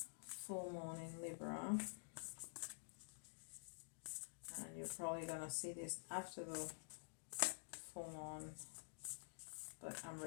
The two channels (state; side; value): silent; right; digital silence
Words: full moon in Libra. And you're probably gonna see this after the full moon, but I'm